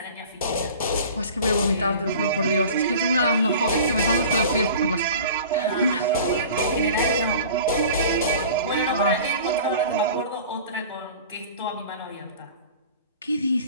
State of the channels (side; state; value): both; inverted; correlation -0.41